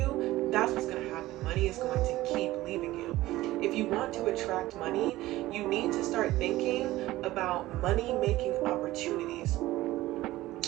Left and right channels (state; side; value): quieter; left; 16.9 dB